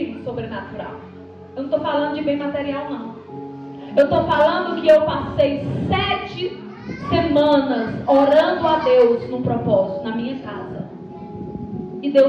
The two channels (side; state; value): both; identical; correlation 1.00